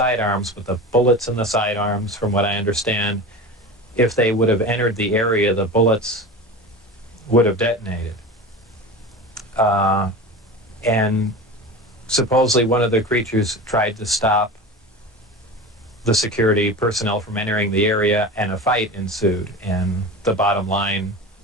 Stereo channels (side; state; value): both; normal; correlation 0.30